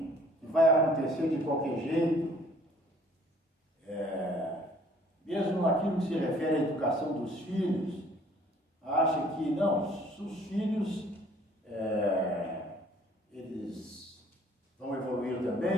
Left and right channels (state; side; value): normal; both; correlation 0.57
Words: vai acontecer de qualquer jeito. Mesmo naquilo que se refere à educação dos filhos, acha que não, os filhos, eles vão evoluir